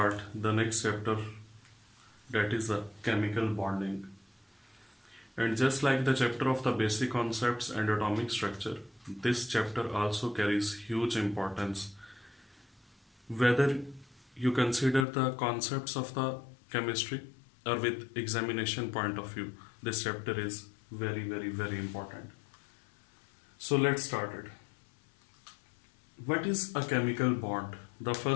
the next chapter, that is the chemical bonding. And just like the chapter of the basic concepts and atomic structure, this chapter also carries huge importance. Whether you consider the concepts of the chemistry or with examination point of view, this chapter is very important. So let's start it. What is a chemical bond? The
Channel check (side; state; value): right; drops out; at 15.1 s